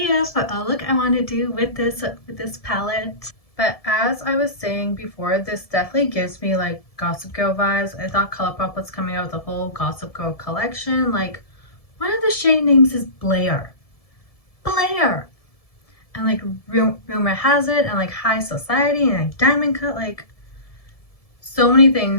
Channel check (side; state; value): right; late; 1.7 ms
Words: for a look I want to do with this palette. But as I was saying before, this definitely gives me like Gossip Girl vibes. I thought Colourpop was coming out with a whole Gossip Girl collection. Like, one of the shade names is Blair. Blair! And like Rumor Has It, and like High Society, and like Diamond Cut. Like, so many